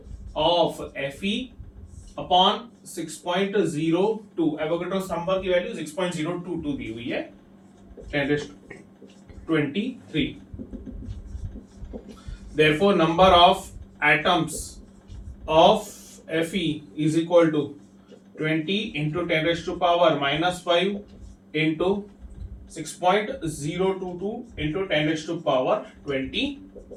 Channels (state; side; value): identical; both; correlation 1.00